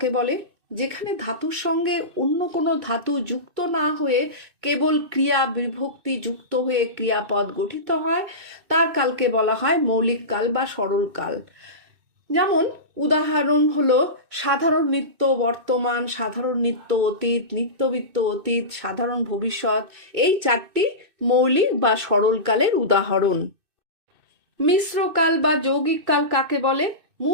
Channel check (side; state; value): left; late; 2.6 ms